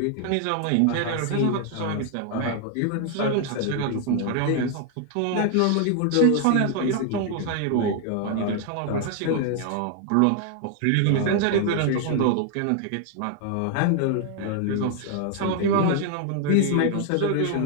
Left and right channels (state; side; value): different; both; correlation 0.00